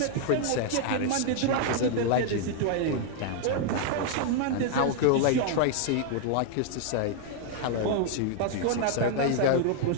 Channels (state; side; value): different; both; correlation 0.00